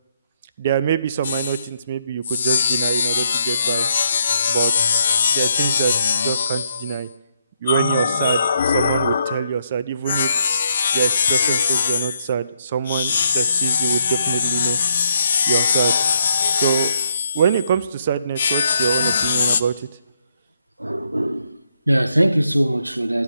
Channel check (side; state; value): both; inverted; correlation -0.75